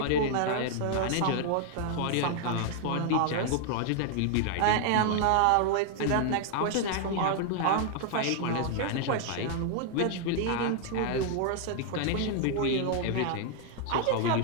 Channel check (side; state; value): both; different; correlation 0.00